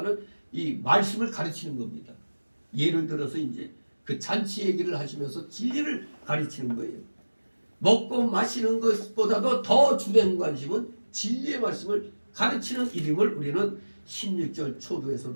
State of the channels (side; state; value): both; inverted; correlation -1.00